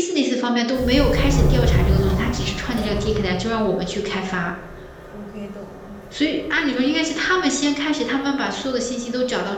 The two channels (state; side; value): identical; both; correlation 1.00